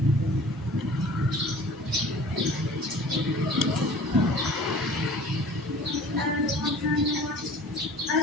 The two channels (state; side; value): normal; both; correlation 0.46